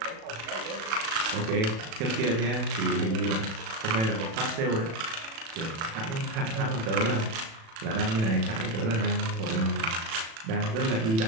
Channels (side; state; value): left; late; 36 ms